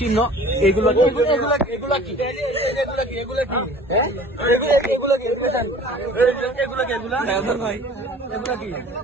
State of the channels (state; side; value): normal; both; correlation 0.46